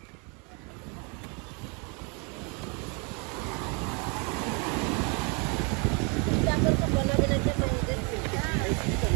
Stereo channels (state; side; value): quieter; left; 33.7 dB